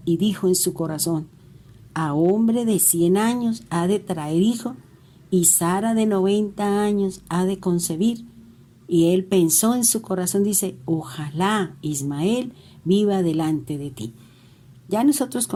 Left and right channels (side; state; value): both; identical; correlation 1.00